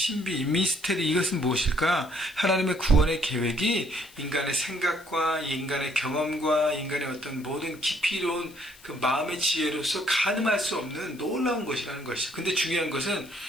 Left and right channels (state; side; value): noise; left; hiss, 23 dB below the sound